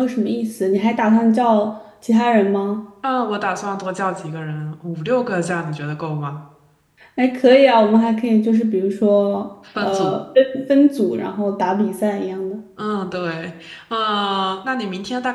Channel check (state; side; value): identical; both; correlation 1.00